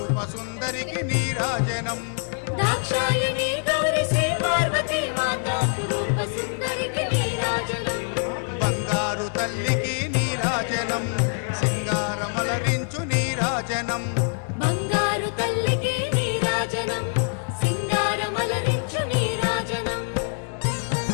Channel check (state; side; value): silent; right; 62 dB below the other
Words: సుందరికి నీరాజనం దాక్షాయణి గౌరి శ్రీ పార్వతీ మాత అపురూప సుందరికి నీరాజనం బంగారు తల్లికి నీరాజనం సింగారమలరించు నీరాజనం బంగారు తల్లికి నీరాజనం సింగారమలరించు నీరాజనం